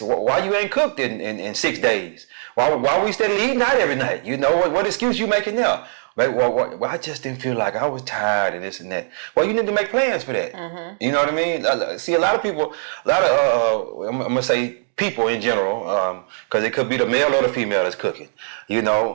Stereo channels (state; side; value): silent; left; digital silence